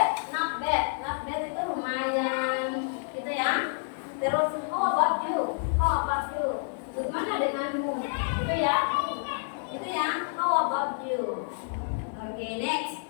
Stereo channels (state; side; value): silent; right; 59 dB below the other